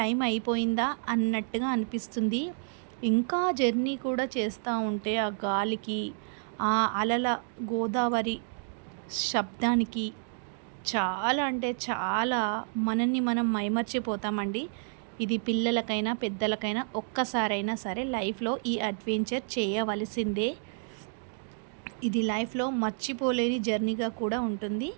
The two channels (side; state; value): left; silent; digital silence